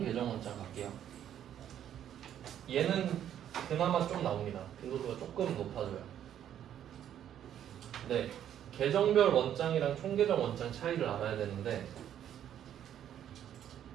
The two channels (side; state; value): left; quieter; 10.3 dB